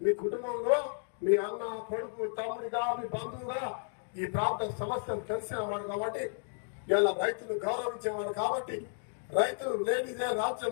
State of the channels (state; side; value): silent; right; digital silence